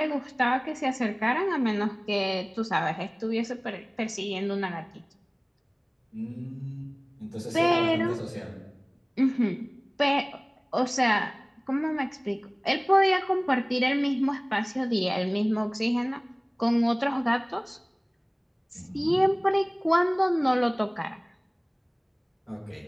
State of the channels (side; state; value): both; identical; correlation 1.00